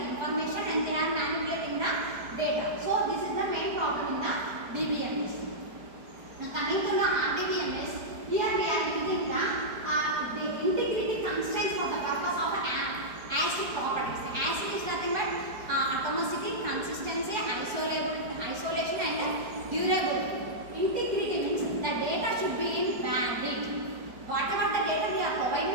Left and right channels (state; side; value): late; left; 4.8 ms